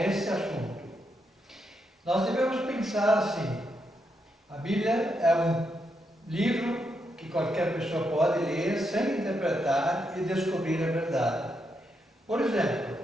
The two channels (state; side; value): normal; both; correlation 0.81